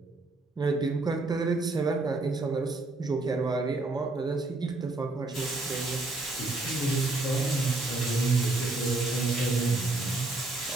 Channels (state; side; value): quieter; left; 3.0 dB